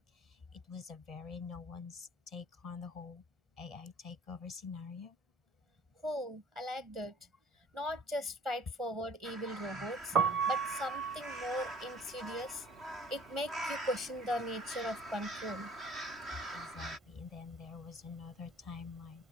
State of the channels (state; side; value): normal; both; correlation 0.51